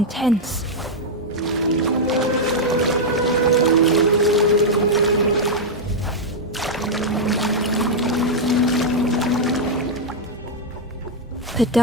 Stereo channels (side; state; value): both; normal; correlation -0.03